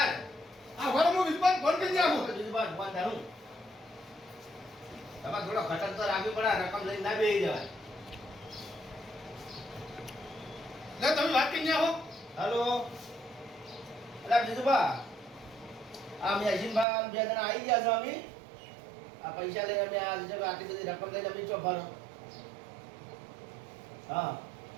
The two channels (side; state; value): left; drops out; at 16.9 s